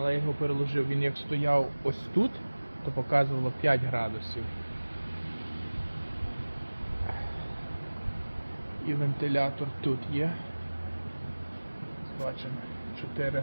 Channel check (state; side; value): inverted; both; correlation -1.00